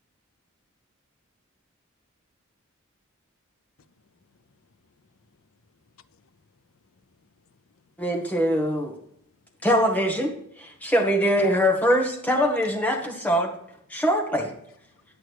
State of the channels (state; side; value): normal; both; correlation 0.56